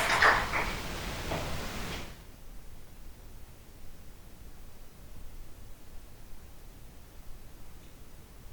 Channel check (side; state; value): both; identical; correlation 1.00